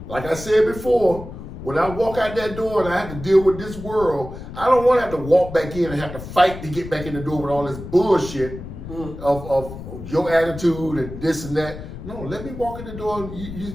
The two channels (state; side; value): noise; left; rumble, 11 dB below the sound